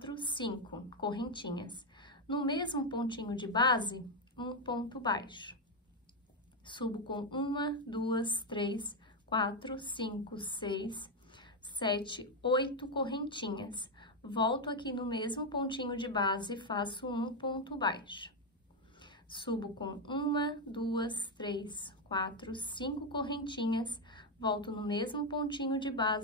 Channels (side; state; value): both; normal; correlation 0.05